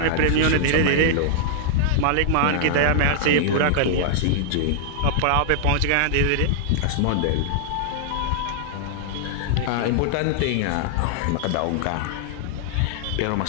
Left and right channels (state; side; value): different; both; correlation -0.01